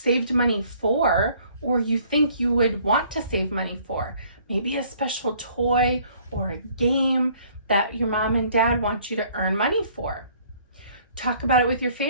money for or you think you would want to save money for? Maybe a special toy or a game that your mom and dad want you to earn money for. Talk about it with your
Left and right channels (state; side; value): inverted; both; correlation -0.59